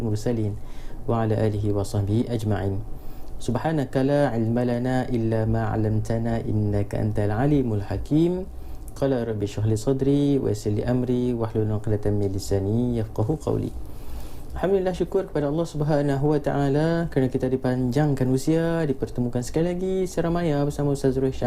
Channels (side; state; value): both; identical; correlation 1.00